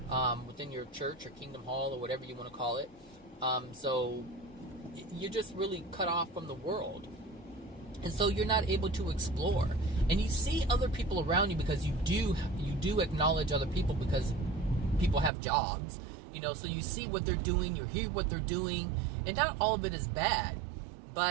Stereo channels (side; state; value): left; drops out; at 15.3 s